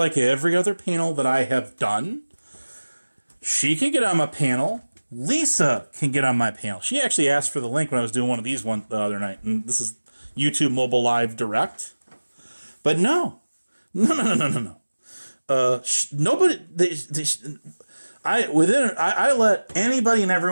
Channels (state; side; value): inverted; both; correlation -1.00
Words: every other panel that I have done, she can get on my panel. Lisa can get on my panel. She actually asked for the link when I was doing one of these the other night. And this is YouTube Mobile Live Direct. But no. Nobody... I let anybody and